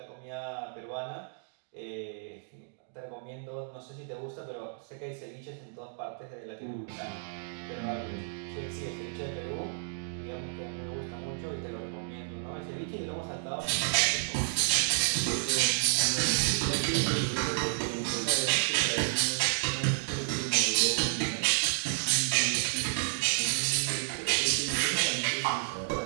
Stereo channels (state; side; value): silent; left; digital silence